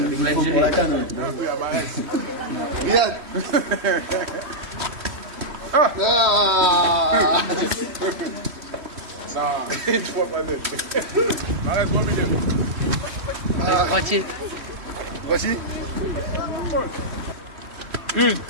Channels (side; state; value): left; late; 3.1 ms